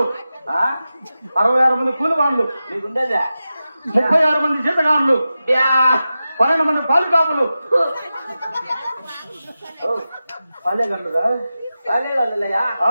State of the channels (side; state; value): both; inverted; correlation -0.93